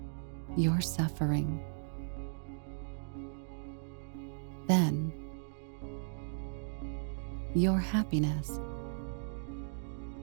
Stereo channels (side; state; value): left; silent; digital silence